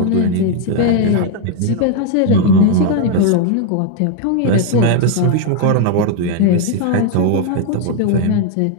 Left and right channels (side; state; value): both; different; correlation 0.00